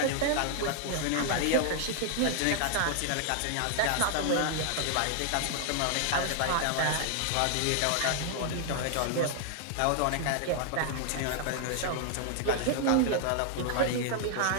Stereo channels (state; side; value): different; both; correlation 0.00